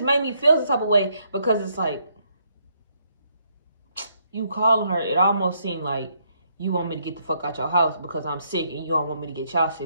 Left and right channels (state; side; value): inverted; both; correlation -0.73